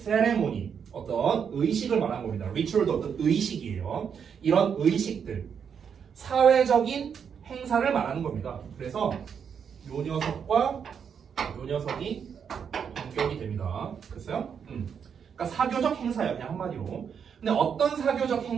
어떤 의식을 말하는 겁니다. 리추얼도 어떤 의식이에요. 이런 의식들, 사회적인 행사를 말하는 겁니다. 그래서 요 녀석과 요 녀석이 동격이 됩니다. 됐어요? 그러니까 사교적 행사예요. 그냥 한마디로. 근데 어떤 사교적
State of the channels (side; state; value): left; quieter; 7.2 dB